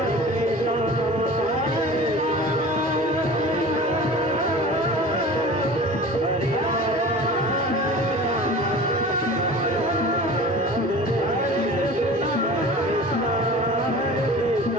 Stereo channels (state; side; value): normal; both; correlation 0.39